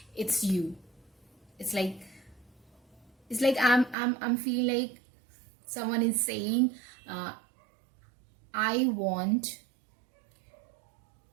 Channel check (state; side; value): drops out; left; at 4.0 s